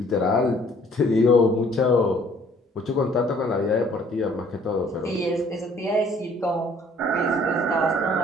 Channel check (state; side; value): normal; both; correlation 0.58